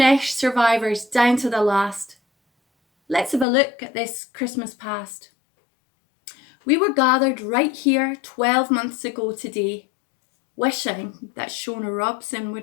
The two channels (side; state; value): right; drops out; at 3.5 s